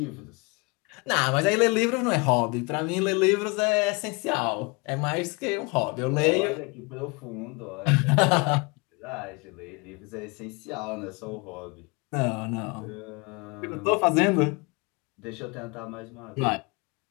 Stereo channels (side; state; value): right; quieter; 29.2 dB